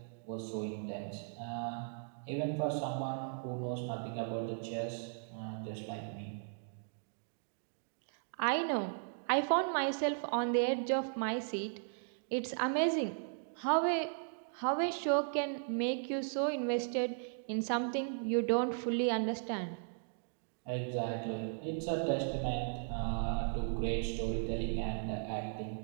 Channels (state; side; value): silent; left; digital silence